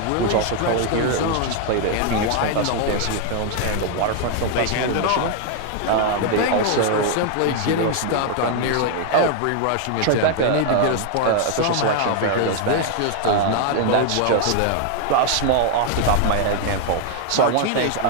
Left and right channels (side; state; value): both; different; correlation 0.00